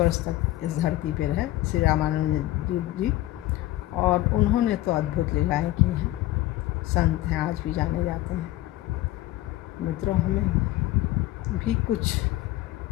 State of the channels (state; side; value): quieter; right; 16.2 dB